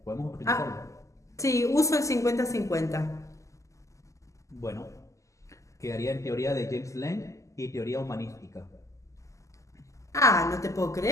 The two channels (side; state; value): right; late; 0.16 ms